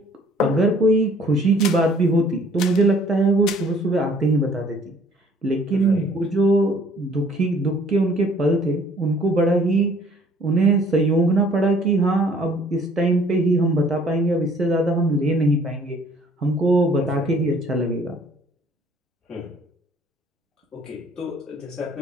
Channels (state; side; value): normal; both; correlation 0.57